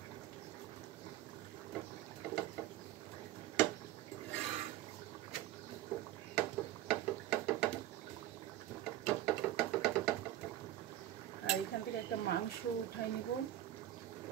আর এখান থেকে একটা মাংস উঠাই নিব।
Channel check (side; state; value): left; quieter; 13.5 dB